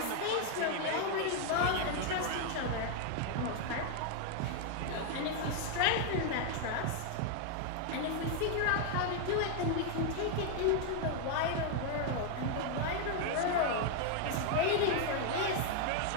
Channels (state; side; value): different; both; correlation 0.00